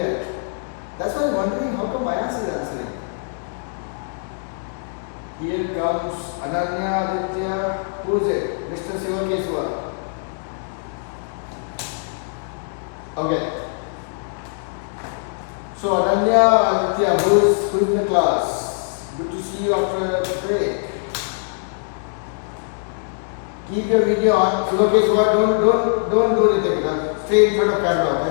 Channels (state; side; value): silent; right; digital silence